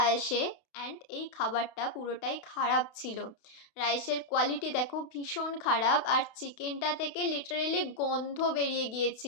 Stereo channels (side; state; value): right; late; 32 ms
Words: আসে, অ্যান্ড এই খাবারটা পুরোটাই খারাপ ছিল। রাইসের কোয়ালিটি দেখো ভীষণ খারাপ, আর চিকেনটা থেকে লিটারেলি গন্ধ বেরিয়ে